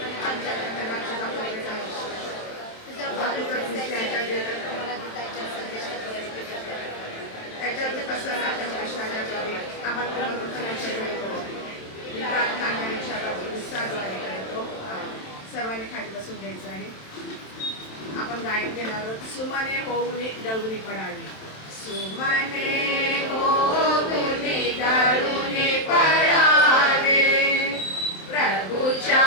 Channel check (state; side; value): late; right; 27 ms